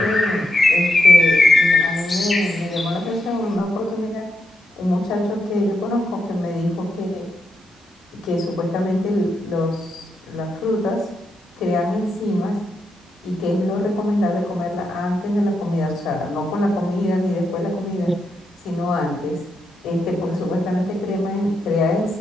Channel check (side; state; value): both; normal; correlation 0.82